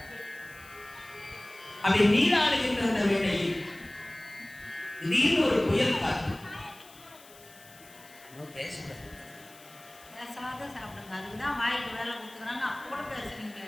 அப்படி நீராடுகின்ற அந்த வேளையில் திடீர்னு ஒரு புயல் காற்று. பேசாத சாப்பிடுங்க, அதுதான் வாய்க்கு வேலை கொடுத்துக்கிறாங்க. அப்போ கூட பேசுறீங்க.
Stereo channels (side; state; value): left; noise; hiss, 22 dB below the sound